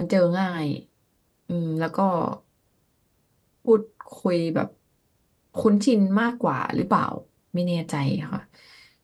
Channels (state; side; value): identical; both; correlation 1.00